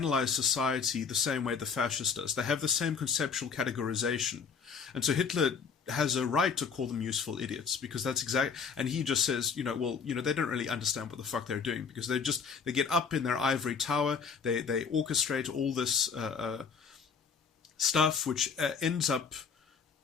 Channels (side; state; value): right; quieter; 5.9 dB